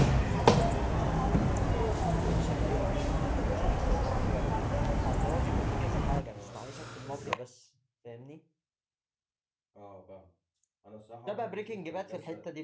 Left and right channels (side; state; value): both; identical; correlation 1.00